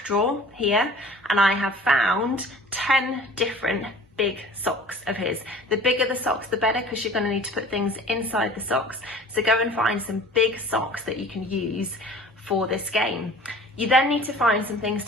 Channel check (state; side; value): normal; both; correlation 0.45